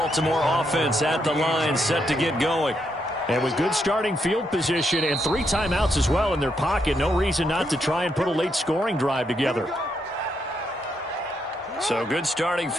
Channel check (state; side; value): normal; both; correlation 0.78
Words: offense at the line, set to get going. And with good starting field position and 3 timeouts as well in their pocket, no reason not to try and put a late scoring drive together. So good starting